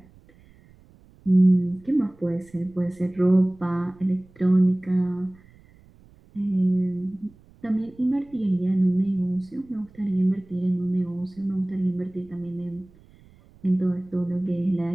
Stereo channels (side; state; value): right; noise; rumble, 27 dB below the sound